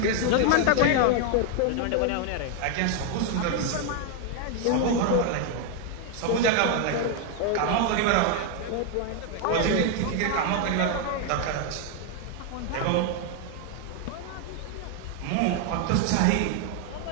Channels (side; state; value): both; different; correlation 0.01